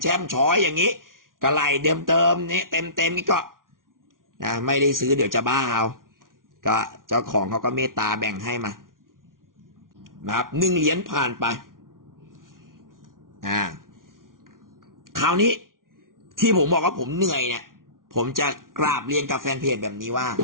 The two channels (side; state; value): left; late; 0.90 ms